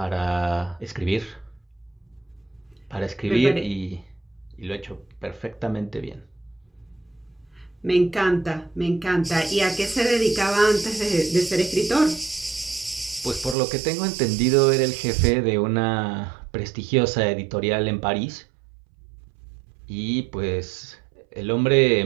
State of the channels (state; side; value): drops out; left; at 13.6 s